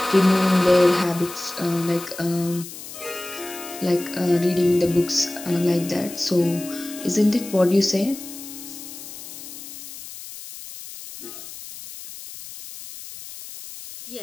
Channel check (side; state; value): left; noise; hiss, 13 dB below the sound